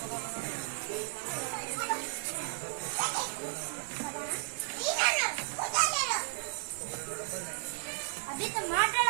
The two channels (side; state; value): left; silent; 55 dB below the other